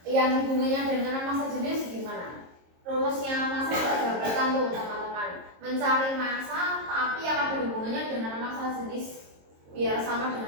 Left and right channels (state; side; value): late; left; 22 ms